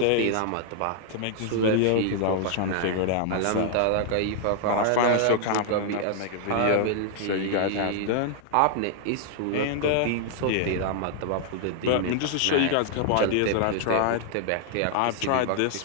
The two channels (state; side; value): different; both; correlation 0.00